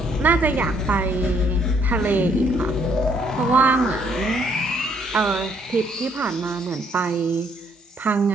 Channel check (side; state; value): both; normal; correlation 0.68